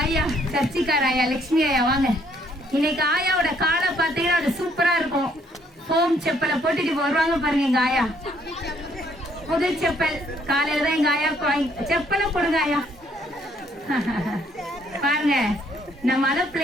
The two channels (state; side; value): normal; both; correlation 0.67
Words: ஆயா? சர்ச்சிக்கார ஆயா, லட்சுமி ஆயா வாங்க. இன்னைக்கு ஆயாவோட காலை பார்த்தீங்கன்னா அது சூப்பரா இருக்கும். ஹோம் செப்பலை போட்டுட்டு வருவாங்க பாருங்க எங்க ஆயா. புது செப்பல் காலையில தான் எங்க ஆயா செப்பலை போடுங்க ஆயா. பாருங்க, நம்ம அதை